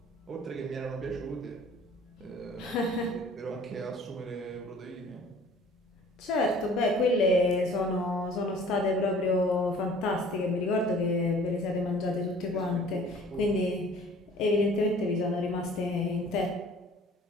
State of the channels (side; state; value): both; normal; correlation 0.50